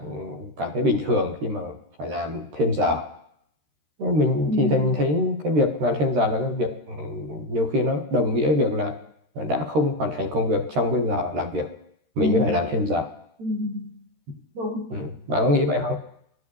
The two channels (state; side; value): late; left; 13 ms